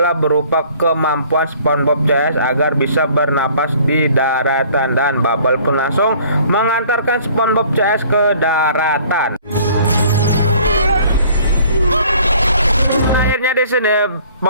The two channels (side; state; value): both; inverted; correlation -0.54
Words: berupa kemampuan SpongeBob CS agar bisa bernapas di daratan. Dan Bubble pun langsung mengantarkan SpongeBob CS ke daratan. Akhirnya di sini